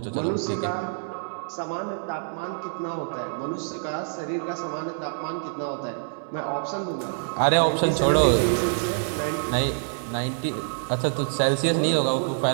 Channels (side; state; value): left; silent; 61 dB below the other